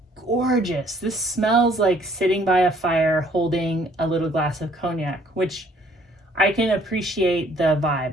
gorgeous. This smells like sitting by a fire holding a little glass of cognac, which I can appreciate the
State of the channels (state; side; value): normal; both; correlation 0.61